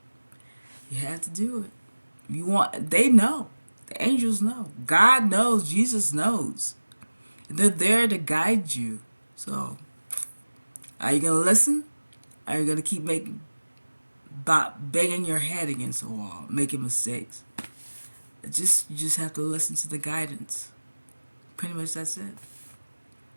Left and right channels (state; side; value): inverted; both; correlation -1.00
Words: You have to do it. They know. The angels know. God knows. Jesus knows. They're there to guide you. So, are you going to listen? Are you going to keep banging your head against the wall, making mistakes? You just have to listen to the guidance. Pretty much that's it.